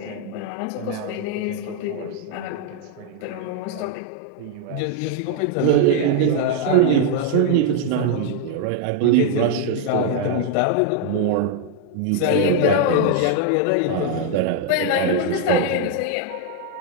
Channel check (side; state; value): both; different; correlation 0.00